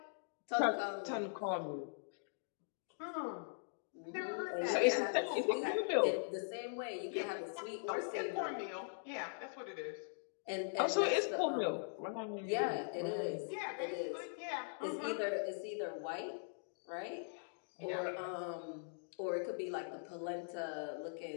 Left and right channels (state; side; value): silent; right; digital silence